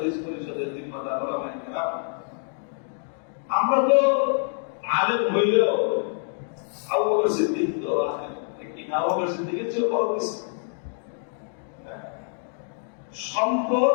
পরিষদের জিম্মাদার ওলামায়ে কেরাম, আমরা তো আলেম হইলেও আবু বকর সিদ্দিক তো আবু বকর সিদ্দিকের চেয়ে বড় কিছু।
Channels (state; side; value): silent; right; digital silence